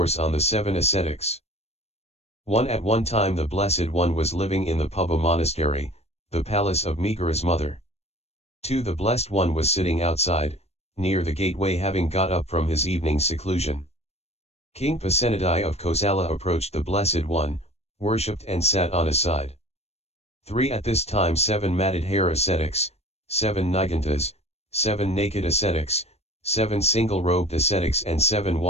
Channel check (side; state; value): right; late; 0.31 ms